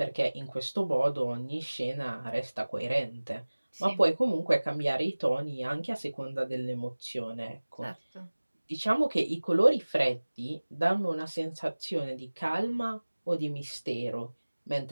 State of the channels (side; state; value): both; inverted; correlation -1.00